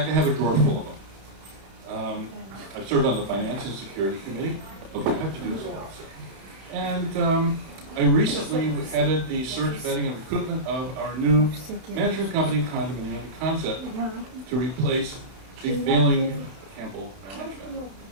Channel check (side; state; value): left; late; 31 ms